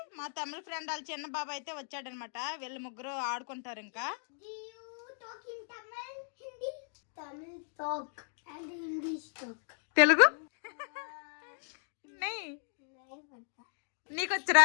మా తమిళ ఫ్రెండ్ వాళ్ళ చిన్న బాబు అయితే వచ్చాడనమాట. వీళ్ళు ముగ్గురు ఆడుకుంటారు. ఇంకా తెలుగు నీకొచ్చరా?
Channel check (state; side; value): silent; right; digital silence